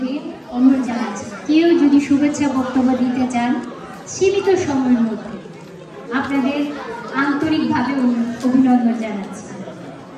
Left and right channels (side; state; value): both; identical; correlation 1.00